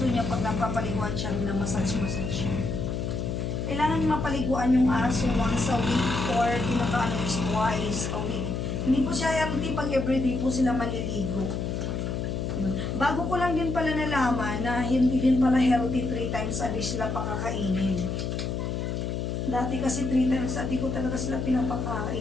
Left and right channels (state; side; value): noise; left; hum, 2 dB below the sound